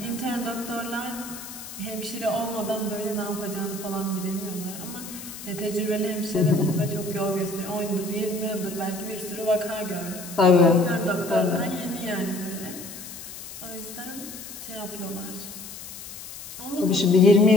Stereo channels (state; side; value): noise; left; hiss, 12 dB below the sound